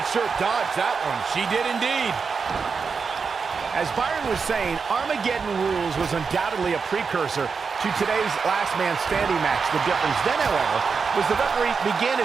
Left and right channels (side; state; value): left; quieter; 5.3 dB